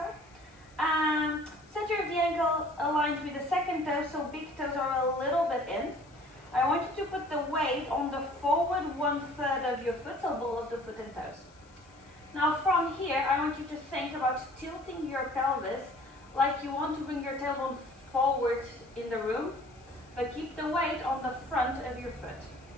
Center of the ankle aligned with the second toe, so big toes are a little bit in. I want you to put the weight on the forward 1/3 of your foot, so ball of the foot and toes. Now from here, I want you to think about tilting your pelvis like you want to bring your tailbone forward in the room, but keep the weight on the front of your foot.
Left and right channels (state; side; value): noise; left; hiss, 29 dB below the sound